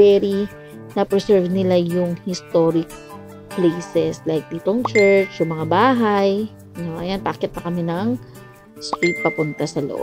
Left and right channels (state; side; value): identical; both; correlation 1.00